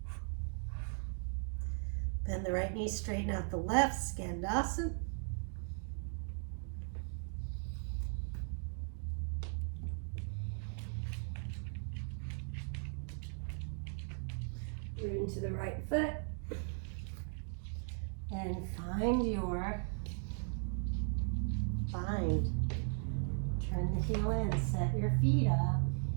Bend the right knee, straighten out the left, skandasana. Root into the right foot. And find your bind. Turn the heel in, set your feet up.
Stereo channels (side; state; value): left; silent; 53 dB below the other